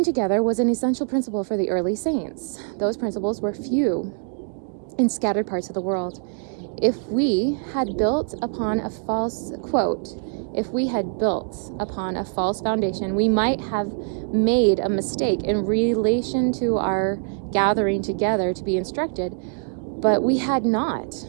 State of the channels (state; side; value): silent; left; 63 dB below the other